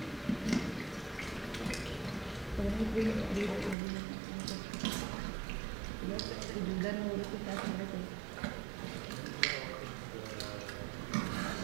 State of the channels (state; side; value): drops out; left; at 3.8 s